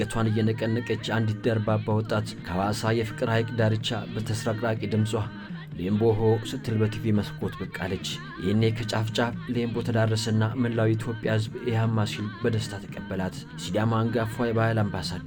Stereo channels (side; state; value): both; identical; correlation 1.00